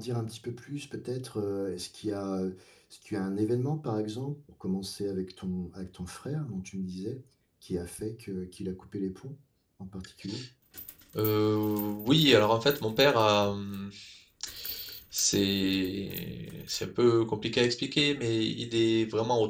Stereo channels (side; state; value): both; identical; correlation 1.00